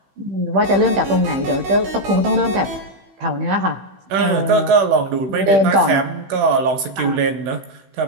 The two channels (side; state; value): left; late; 16 ms